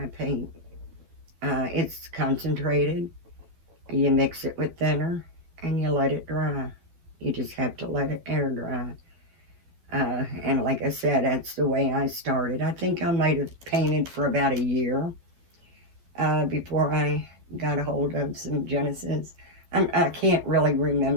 paint. It's concentrated. You mix it with thinner and you let it dry. You just have to let it air dry. And like I said, that's the way I started. I think I might have painted for about a year before I got a hold of some Genesis. I can't really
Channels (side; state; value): left; late; 12 ms